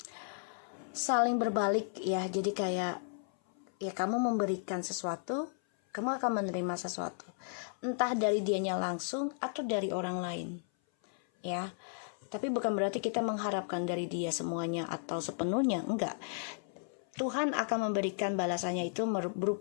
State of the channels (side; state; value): right; silent; 55 dB below the other